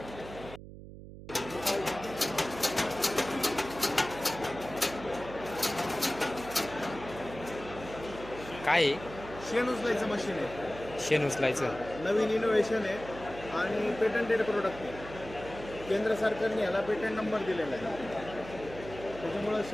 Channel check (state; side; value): noise; right; hum, 14 dB below the sound